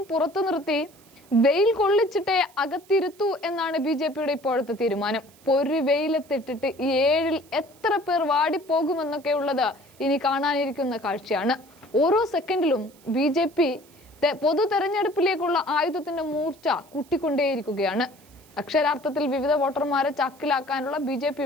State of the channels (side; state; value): right; noise; hiss, 27 dB below the sound